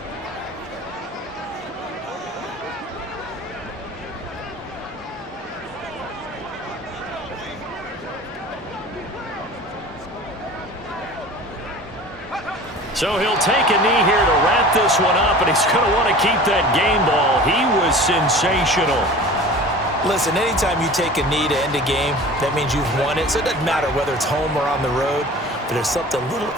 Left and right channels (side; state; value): both; normal; correlation 0.40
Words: So he'll take a knee here to wrap this one up, and he's going to want to keep that game ball. He was sensational. Listen, anytime you take a knee to end a game, that means you've won it. So it doesn't matter whether it's home or on the road, but there's something a little